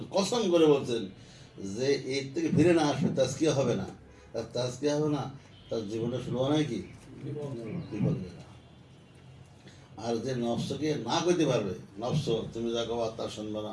কসম করে বলছেন যে এর থেকে ফিরে না আসবে, তাজকিয়া হবে না। তার তাজকিয়া হবে না, তার জীবনটা শুরু হয় কি বিপদ। আর যে নফসকে না করতে পারবে, নফস তুমি যা গাওয়া তার শুনবো না,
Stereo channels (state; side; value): identical; both; correlation 1.00